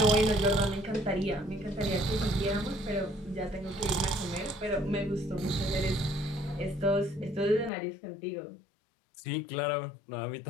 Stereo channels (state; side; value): drops out; right; at 7.7 s